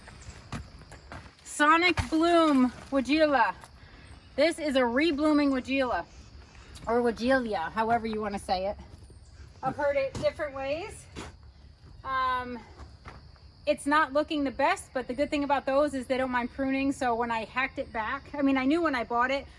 Sonic Bloom Weigela. This is a reblooming Weigela, or Weigelia, however you want to say it. I've heard it different ways. It's not looking the best, but the good thing about those is they don't mind pruning. So when I hacked it back, I mean, I knew when I bought it,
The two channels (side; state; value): both; identical; correlation 1.00